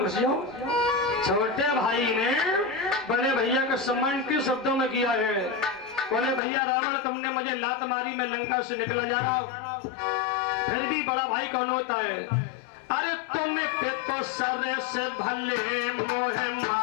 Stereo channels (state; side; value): drops out; right; at 6.4 s